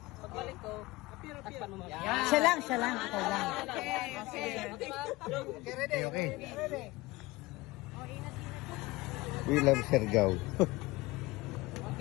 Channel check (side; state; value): right; quieter; 21.1 dB